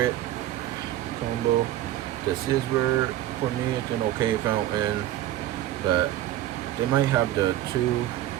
combo, the Sizzler, for me it's an okay fountain, but they might have the 2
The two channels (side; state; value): left; quieter; 13.6 dB